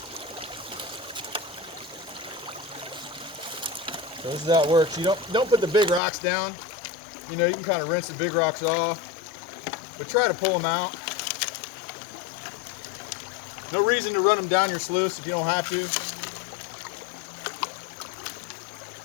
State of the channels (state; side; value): drops out; right; at 6.0 s